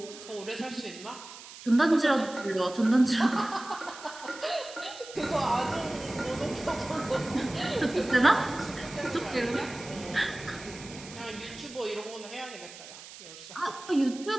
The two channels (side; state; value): right; noise; hiss, 15 dB below the sound